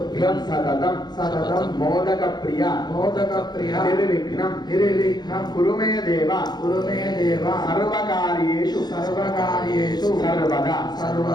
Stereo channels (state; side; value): late; right; 0.20 ms